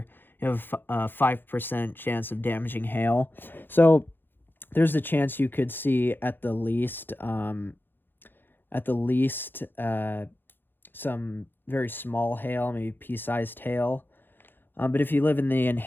You have a 5% chance of damaging hail. So there's a chance you could see at the least some very small hail, maybe pea-sized hail. But if you live in the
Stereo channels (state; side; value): late; right; 0.098 ms